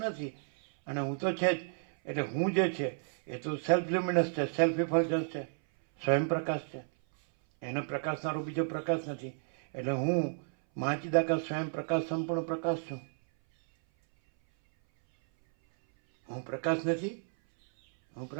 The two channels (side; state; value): left; silent; 56 dB below the other